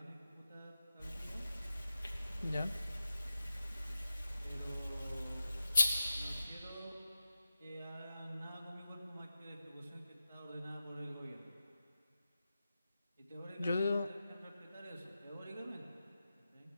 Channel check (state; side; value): inverted; both; correlation -0.91